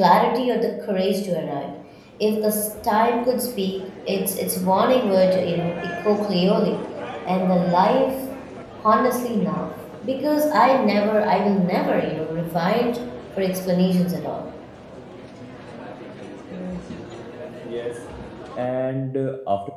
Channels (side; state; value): both; identical; correlation 1.00